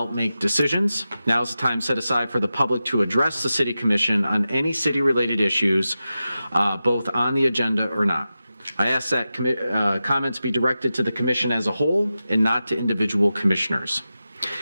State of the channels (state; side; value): inverted; both; correlation -0.92